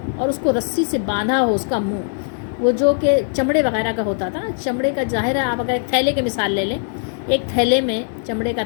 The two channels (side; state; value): right; silent; 66 dB below the other